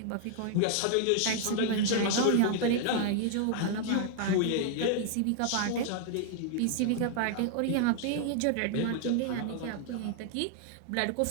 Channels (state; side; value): different; both; correlation 0.00